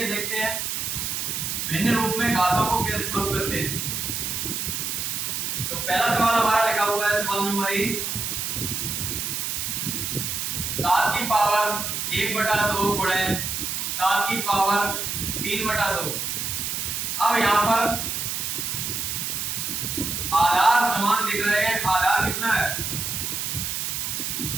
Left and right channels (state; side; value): noise; right; hiss, 2 dB below the sound